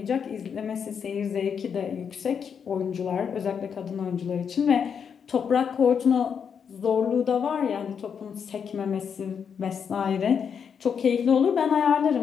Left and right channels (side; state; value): right; quieter; 7.0 dB